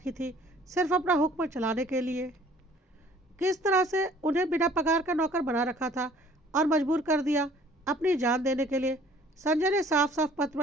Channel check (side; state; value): both; normal; correlation 0.54